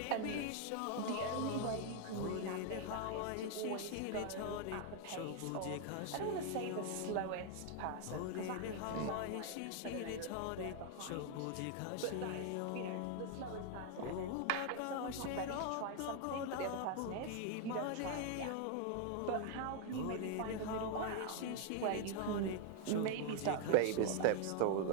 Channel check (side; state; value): both; different; correlation 0.00